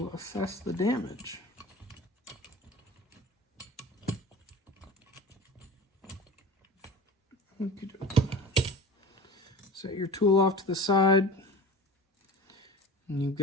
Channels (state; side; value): normal; both; correlation 0.36